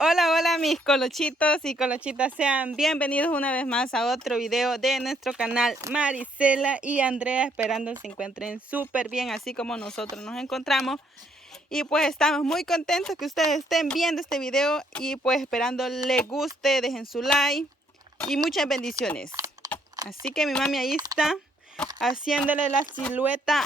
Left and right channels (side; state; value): both; normal; correlation 0.69